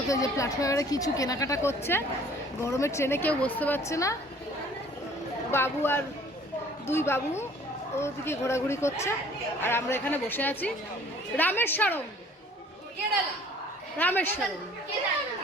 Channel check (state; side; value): normal; both; correlation 0.53